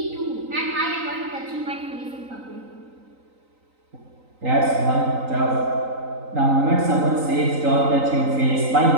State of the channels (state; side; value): late; left; 3.9 ms